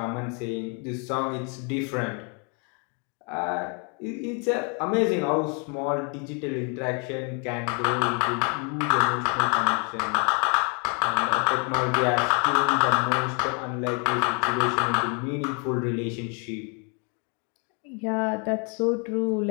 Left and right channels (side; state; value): right; quieter; 36.3 dB